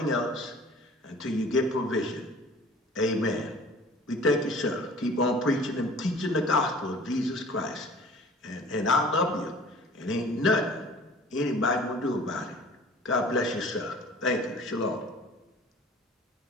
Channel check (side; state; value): both; normal; correlation 0.47